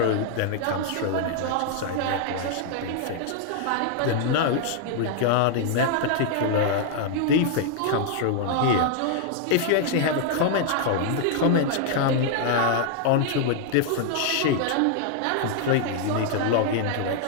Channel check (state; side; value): different; both; correlation 0.00